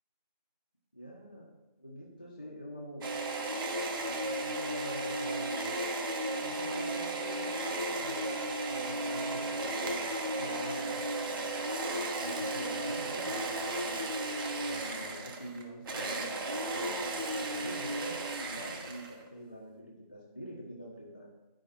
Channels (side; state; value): both; inverted; correlation -0.34